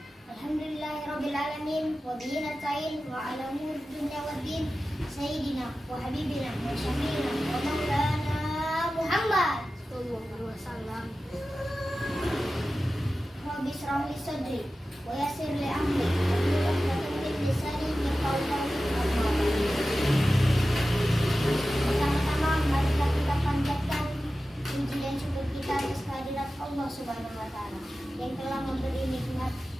Alhamdulillahirrabbilalamin. Wa bihi nasta'in wa ala umuri dunya waddin. Sayyidina wa habibina wa syafiina wa maulana Muhammad Sallallahu alaihi wasallam. Rabbi shrah li sadri wa yassir li amri wahlul 'uqdatam min lisani yafqahu qawli. Pertama-tama mari kita panjatkan puji dan syukur kita atas kehadirat Allah Subhanahu wa taala yang telah memberi nikmat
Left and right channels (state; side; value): normal; both; correlation 0.94